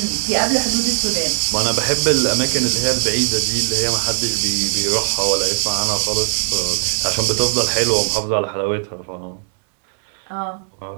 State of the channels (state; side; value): silent; left; 67 dB below the other